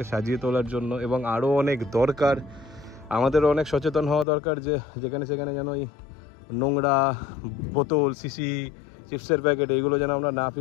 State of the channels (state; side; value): drops out; right; at 4.2 s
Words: সাজিয়ে তোলার জন্য, এবং আরও অনেক দরকার। আমাদেরও অনেক সচেতন হওয়া দরকার যে যেখানে সেখানে যেন এই নোংরা বোতল, শিশি, চিপসের প্যাকেট এইগুলো যেন আমরা না